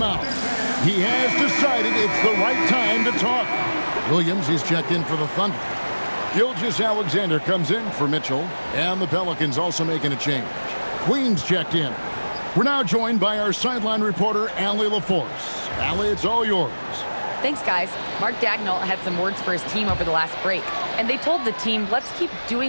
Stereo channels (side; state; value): both; inverted; correlation -1.00